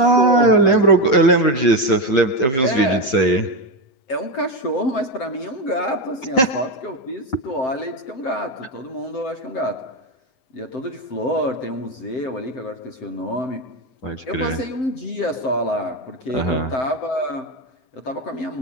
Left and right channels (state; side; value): late; right; 7.5 ms